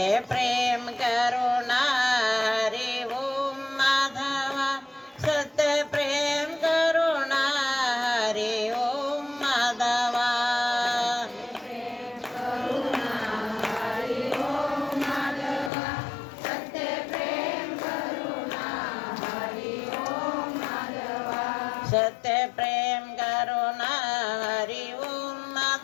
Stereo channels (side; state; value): right; drops out; at 15.7 s